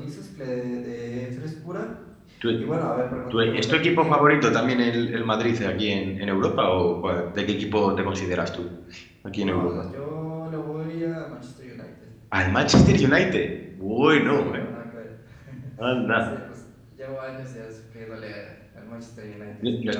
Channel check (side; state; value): both; identical; correlation 1.00